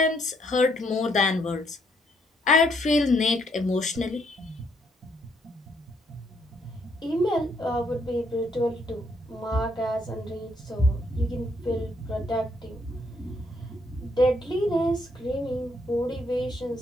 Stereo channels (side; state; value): both; normal; correlation 0.72